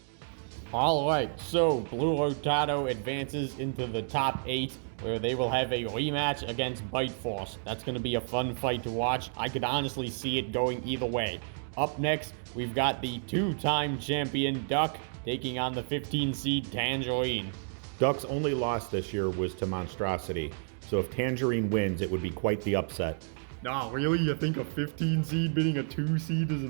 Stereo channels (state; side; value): silent; left; digital silence